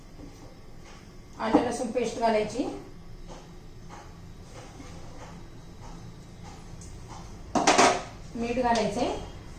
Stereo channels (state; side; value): identical; both; correlation 1.00